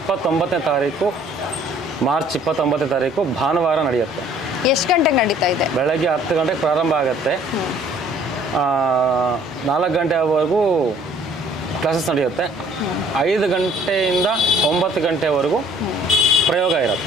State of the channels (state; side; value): normal; both; correlation 0.57